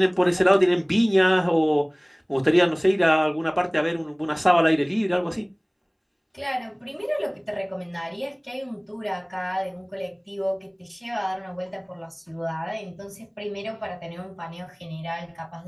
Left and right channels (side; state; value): both; identical; correlation 1.00